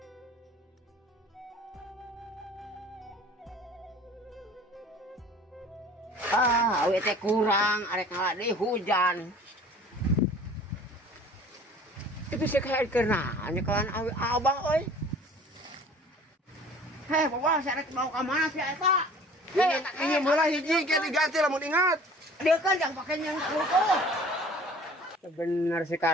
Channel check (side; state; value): both; normal; correlation 0.47